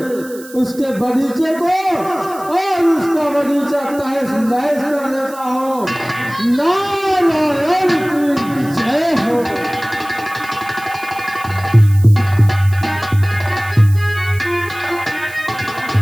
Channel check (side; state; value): right; noise; hiss, 19 dB below the sound